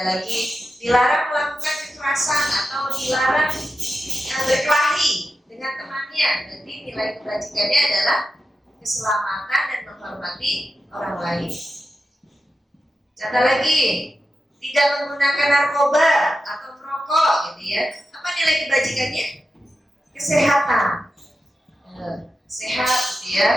lagi dilarang melakukan kekerasan atau dilarang berkelahi dengan temannya. Berarti nilai kebajikannya adalah keselamatan dan menghormati orang lain. Contoh lagi, tidak menggunakan narkoba atau merokok gitu ya. Apa nilai kebajikannya? Kesehatan. Sehat gitu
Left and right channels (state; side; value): normal; both; correlation 0.90